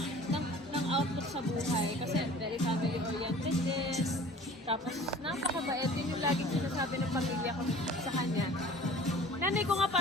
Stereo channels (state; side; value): normal; both; correlation 0.46